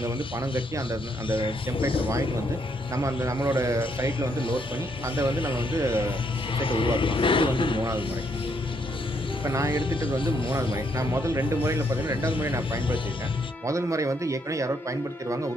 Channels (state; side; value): normal; both; correlation 0.73